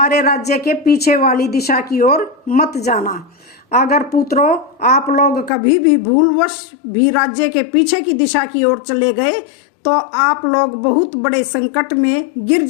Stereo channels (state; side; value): drops out; right; at 5.5 s